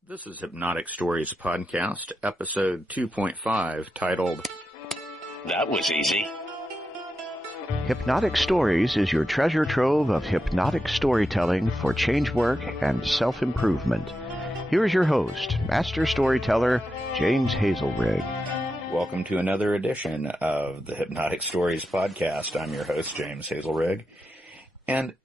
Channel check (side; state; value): both; normal; correlation 0.88